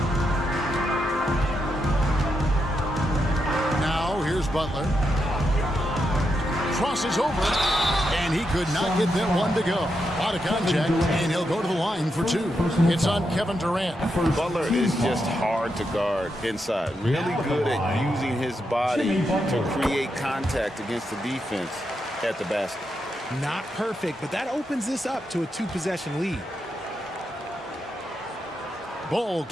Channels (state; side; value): normal; both; correlation 0.84